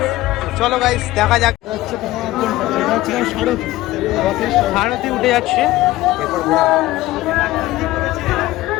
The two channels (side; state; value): right; quieter; 17.1 dB